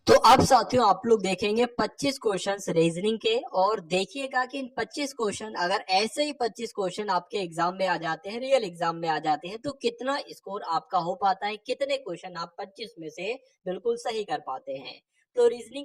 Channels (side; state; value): both; identical; correlation 1.00